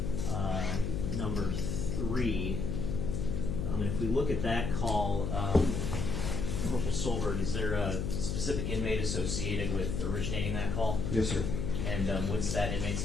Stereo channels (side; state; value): left; noise; hum, 1 dB below the sound